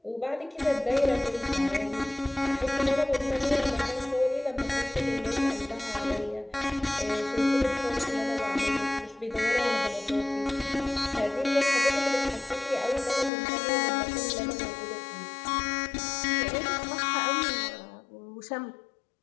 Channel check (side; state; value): right; drops out; at 13.3 s